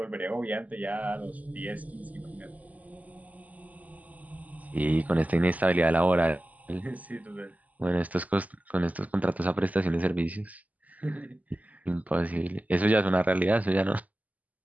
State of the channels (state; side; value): late; left; 0.076 ms